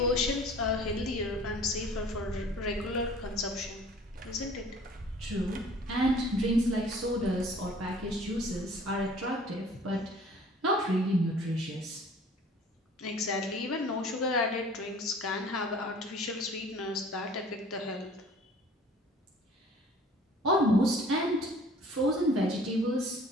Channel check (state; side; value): normal; both; correlation 0.50